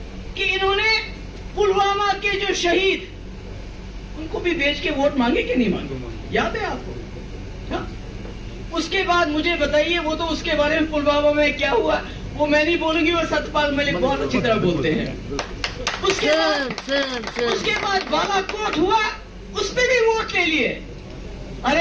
कि इन्होंने पुलवामा के जो शहीद, उनको भी बेच के वोट मांगे कि नहीं मांगे? याद है आपको? हाँ? उसके बाद मुझे बताइए, वो तो उसके बारे में पुलवामा में क्या हुआ वो मैं नहीं बोलूंगी, वो सतपाल मलिक बहुत अच्छी तरह बोलते हैं। उसके बाद बालाकोट हुआ, उस पर भी वोट ले लिए।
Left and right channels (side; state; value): both; identical; correlation 1.00